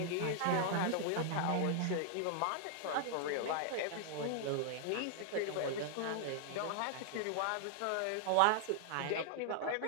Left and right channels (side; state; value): both; different; correlation 0.00